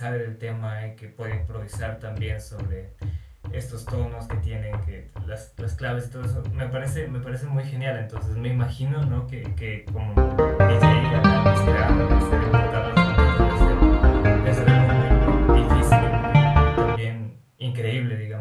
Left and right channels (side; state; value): both; identical; correlation 1.00